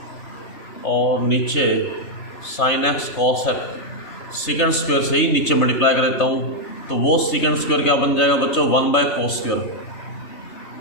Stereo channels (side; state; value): right; late; 3.3 ms